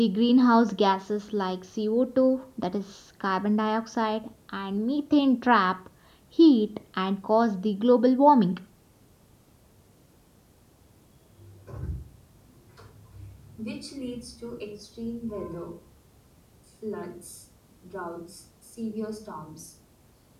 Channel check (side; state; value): both; identical; correlation 1.00